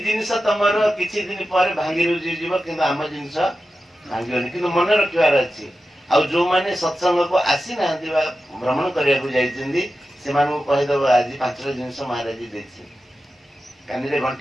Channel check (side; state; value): both; normal; correlation 0.92